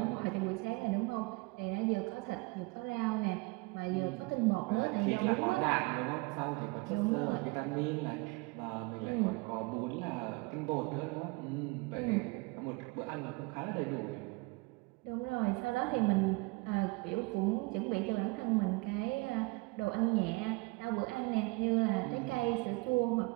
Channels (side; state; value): left; quieter; 26.6 dB